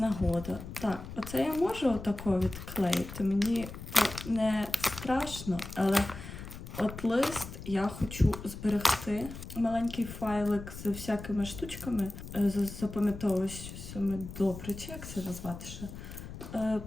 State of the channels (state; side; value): noise; left; rumble, 11 dB below the sound